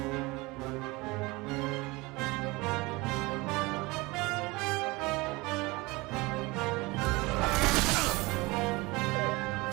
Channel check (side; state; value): left; quieter; 23.3 dB